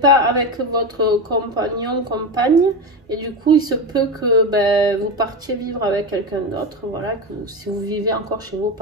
avec votre compagnon, compagne, et du coup, il se peut que ben, vous partiez vivre avec quelqu'un d'autre. Voilà, que si vous vivez encore chez vos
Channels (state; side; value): normal; both; correlation 0.18